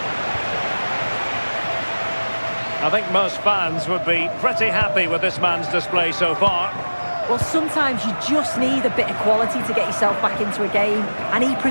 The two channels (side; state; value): both; inverted; correlation -1.00